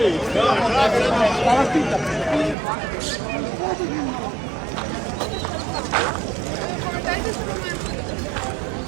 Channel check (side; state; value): left; drops out; at 2.6 s